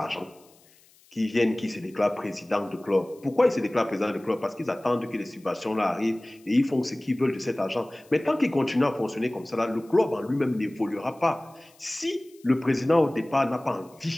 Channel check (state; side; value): noise; left; hiss, 29 dB below the sound